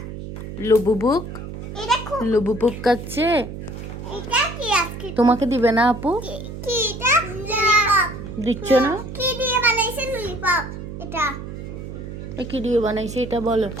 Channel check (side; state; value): right; noise; hum, 9 dB below the sound